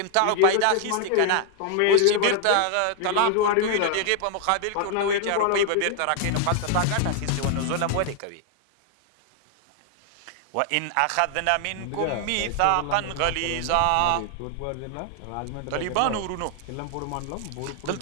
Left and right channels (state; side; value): different; both; correlation 0.00